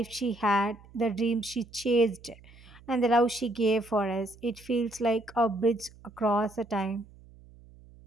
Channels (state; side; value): noise; right; hum, 23 dB below the sound